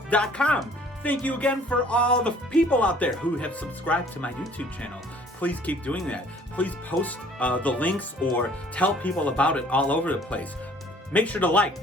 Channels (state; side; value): normal; both; correlation 0.55